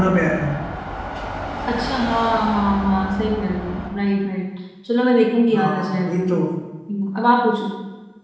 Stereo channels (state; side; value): identical; both; correlation 1.00